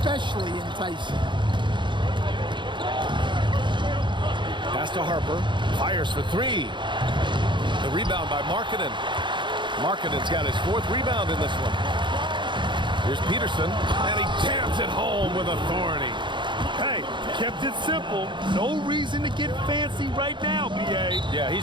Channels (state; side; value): late; left; 0.23 ms